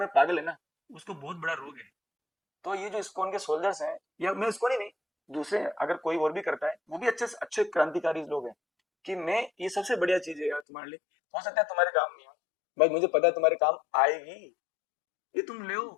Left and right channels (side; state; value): right; drops out; at 10.7 s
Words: पागल है ना, उसको बहुत बड़ा रोग है। तो ये जो इस्कॉन के सोल्जर्स हैं, या मैं इस्कॉन ही नहीं, दूसरे अगर कोई और भी करता है, वो भी अच्छे अच्छे क्रांतिकारी लोग हैं, कि मैं ये सबसे बढ़िया चीज है यार तुम्हारे लिए, हो सकता है तुम्हारे काम नहीं हो, भाई मुझे पता है तुम्हारे काम आएगी, ये तुम ले,